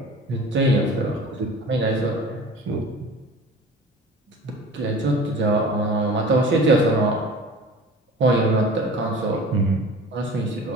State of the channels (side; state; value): both; normal; correlation 0.41